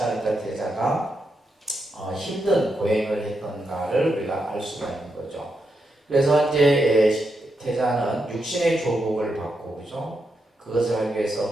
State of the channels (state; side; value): normal; both; correlation 0.84